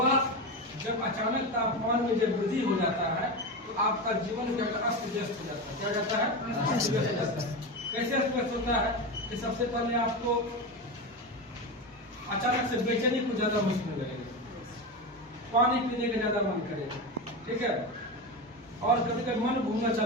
जब अचानक तापमान में जब वृद्धि हो जाता है तो आपका जीवन क्या अस्त व्यस्त हो जाता है। क्या जाता है, अस्त व्यस्त हो जाता है। कैसे अस्त व्यस्त होता है कि सबसे पहले आपको अचानक से बेचैनी कुछ ज्यादा महसूस होने लगेगा, पानी पीने का ज्यादा मन करेगा। ठीक है, और कभी कभी मन घूमना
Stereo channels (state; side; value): normal; both; correlation 0.20